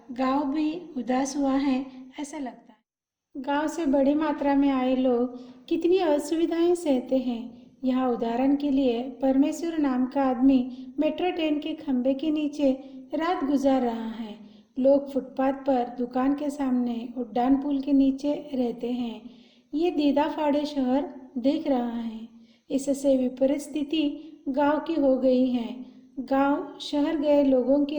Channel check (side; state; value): both; identical; correlation 1.00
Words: गांव भी उदास हुआ है, ऐसा लगता है। गांव से बड़ी मात्रा में आए लोग कितनी असुविधाएं सहते हैं, यहाँ उदाहरण के लिए परमेश्वर नाम का आदमी मेट्रो ट्रेन के खंभे के नीचे रात गुजार रहा है। लोग फुटपाथ पर दुकान के सामने उड्डान पुल के नीचे रहते हैं। ये दीदा फाड़े शहर देख रहा है। इससे विपरीत स्थिति गांव की हो गई है। गांव शहर गए लोगों